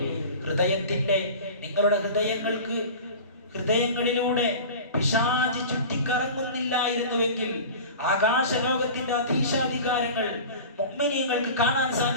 നിങ്ങളുടെ ഹൃദയങ്ങളിലൂടെ പിശാച് ചുറ്റിക്കറങ്ങുന്നില്ലായിരുന്നുവെങ്കിൽ ആകാശലോകത്തിന്റെ അധീശാധികാരങ്ങൾ മുഅ്മിനീങ്ങൾക്ക് കാണാൻ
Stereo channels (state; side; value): inverted; both; correlation -0.36